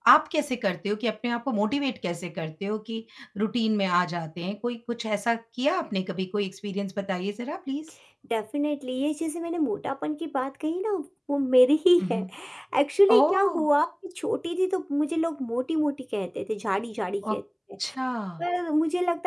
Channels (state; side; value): identical; both; correlation 1.00